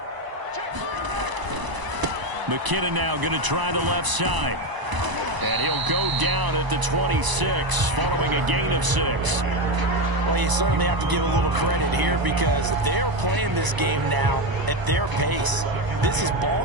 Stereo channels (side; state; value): left; late; 1.0 ms